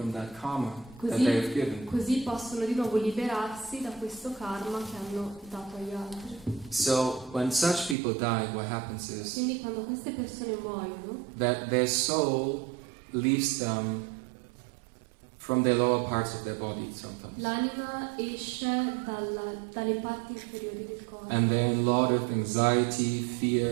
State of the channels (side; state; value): left; drops out; at 8.0 s